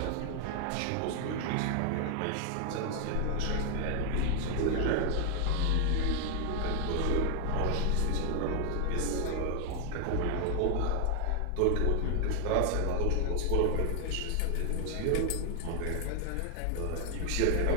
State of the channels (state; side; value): different; both; correlation 0.00